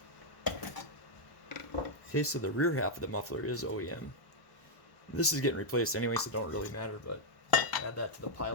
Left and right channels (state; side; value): late; right; 1.1 ms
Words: Okay, so the rear half of the muffler is OEM. This is getting replaced anyway, so it don't really matter, but add that to the